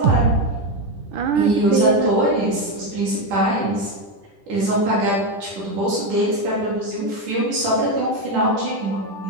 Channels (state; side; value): late; left; 10 ms